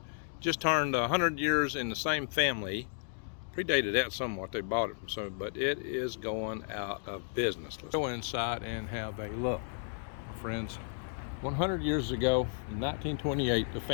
just turned 100 years in the same family. Predated that somewhat, they bought it from some, but it is going out of business. Let's go inside and have a look, my friends. 100 years ago, in 1928, the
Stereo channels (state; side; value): silent; right; digital silence